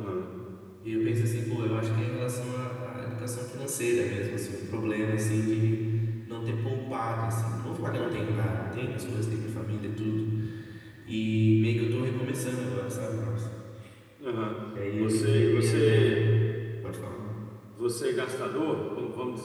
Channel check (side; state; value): both; identical; correlation 1.00